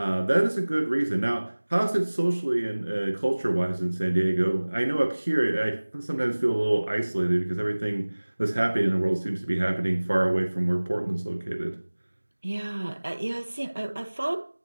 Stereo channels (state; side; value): inverted; both; correlation -1.00